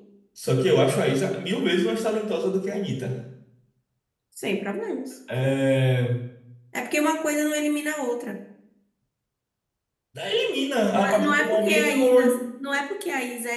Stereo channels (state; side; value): identical; both; correlation 1.00